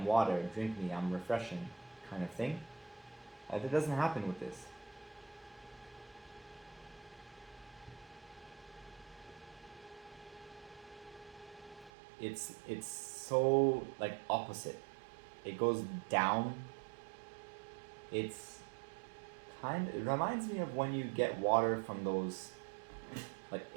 water. Drink me. I'm refreshing," kind of thing. That doesn't happen with this. It's so like opposite. It goes down. It's it reminds me of when you get water from those, like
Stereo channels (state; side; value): drops out; left; at 11.9 s